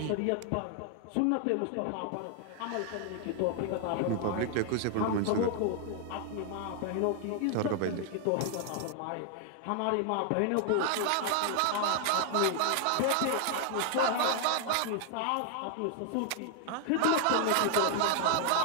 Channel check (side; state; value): both; different; correlation 0.00